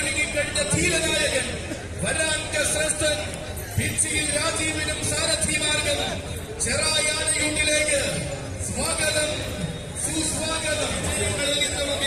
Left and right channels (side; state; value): both; identical; correlation 1.00